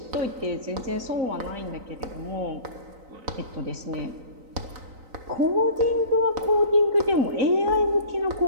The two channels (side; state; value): left; late; 3.9 ms